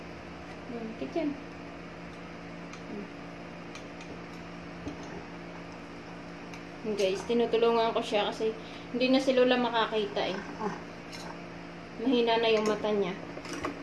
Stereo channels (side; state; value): both; identical; correlation 1.00